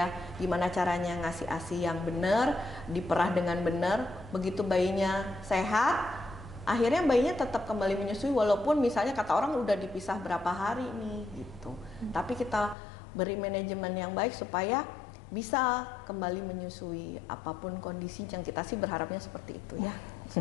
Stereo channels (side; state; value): right; drops out; at 12.8 s